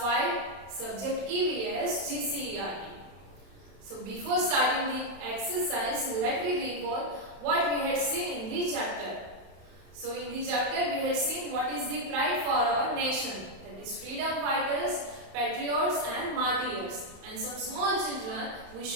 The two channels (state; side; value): late; left; 31 ms